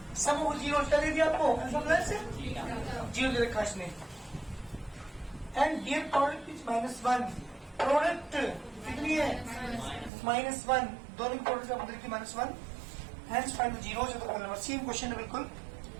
sum हो 0 क्या दे दिया आपको, अल्फा प्लस 0 दे रखा इसने, and here product is -1, product कितनी है -1, दोनों की प्रोडक्ट आपको देखिए -1, hence find the zeros of the polynomial. Same question है बिल्कुल,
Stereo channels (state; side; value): drops out; left; at 10.1 s